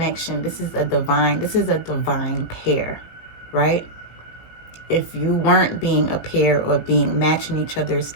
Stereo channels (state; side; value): late; right; 18 ms